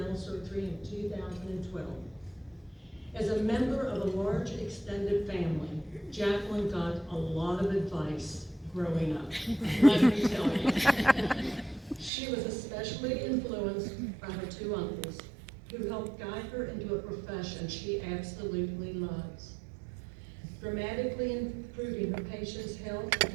surgery in 2012. As a member of a large extended family, Jacqueline got a lot of advice growing up, let me tell you. She was especially influenced by her two uncles, who helped guide her into a profession she absolutely loves, dramatically improving her patients' health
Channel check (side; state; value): left; drops out; at 12.1 s